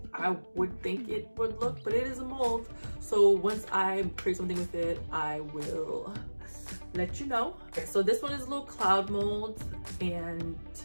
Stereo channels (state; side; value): inverted; both; correlation -1.00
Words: I would think it would look, but it is a mold. So once I create something with it, I will let you know. Okay, so this one is a little cloud mold, and